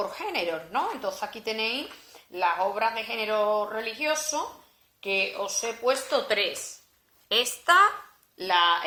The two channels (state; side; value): identical; both; correlation 1.00